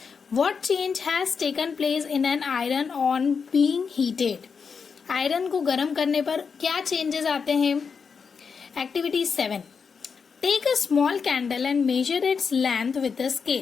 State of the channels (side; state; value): right; quieter; 5.7 dB